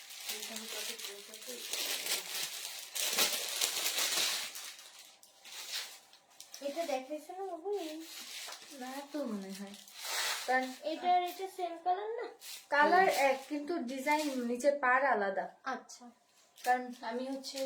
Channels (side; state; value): both; identical; correlation 1.00